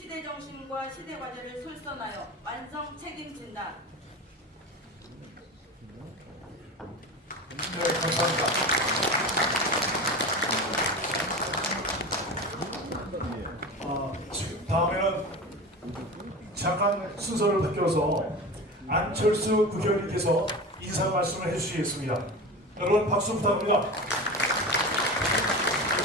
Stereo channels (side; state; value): both; normal; correlation 0.29